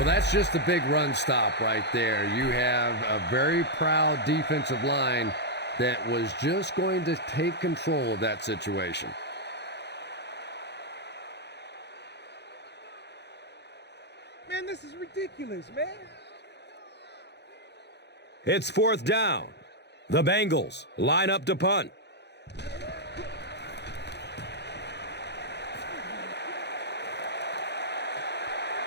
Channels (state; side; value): late; right; 0.50 ms